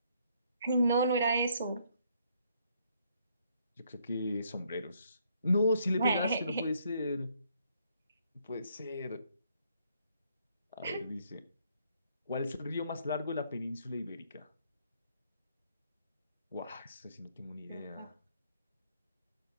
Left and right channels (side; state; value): both; inverted; correlation -0.69